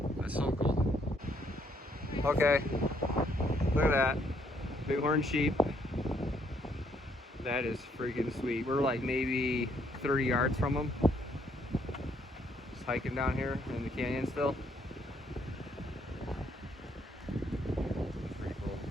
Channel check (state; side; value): normal; both; correlation 0.70